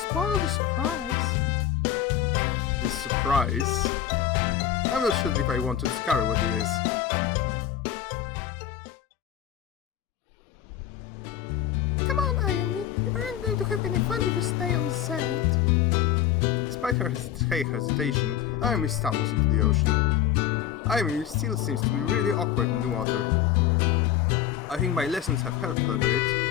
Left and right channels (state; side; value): quieter; right; 10.5 dB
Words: the surprise. The surprise? I'm not sure if I want to discover what it is. Come on, Ayumi. You aren't going to have any fun if you stay on the sand. Despite her hesitation, Ayumi stumbles into the ocean. Ayumi still seems to be really awkward in the water. I think my lessons have helped her a bit,